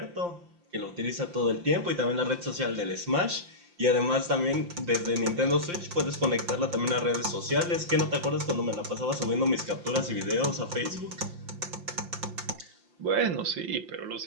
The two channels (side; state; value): left; late; 5.7 ms